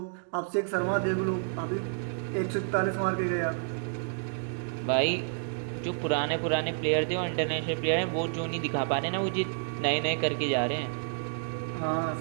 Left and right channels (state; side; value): silent; left; digital silence